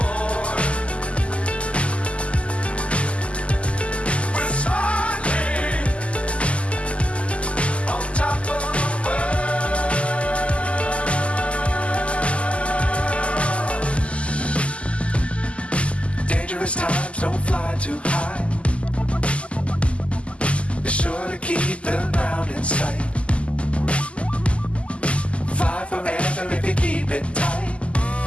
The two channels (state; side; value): late; right; 0.058 ms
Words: Times don't fly too high. Be sure to keep the ground in sight. Fly forever if you keep it tight.